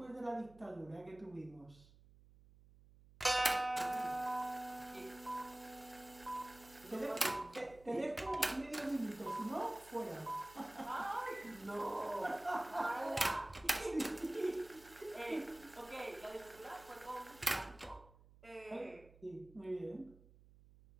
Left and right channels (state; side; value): noise; right; hum, 23 dB below the sound